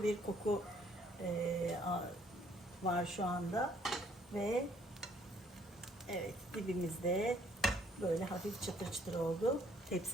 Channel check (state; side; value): normal; both; correlation 0.64